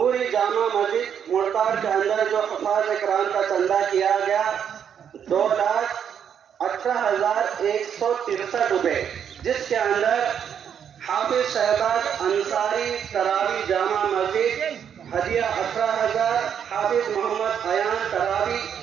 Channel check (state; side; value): quieter; left; 8.3 dB